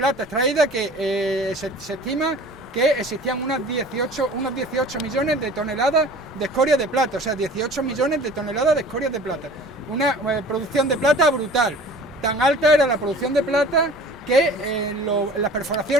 extraída que se estima que existían unos 18 millones de toneladas de escoria de plata, o sea, 18 millones de toneladas de escoria de plata. Una producción de plata brutal. Tan alta era la producción de plata que en las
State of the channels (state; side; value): normal; both; correlation 0.44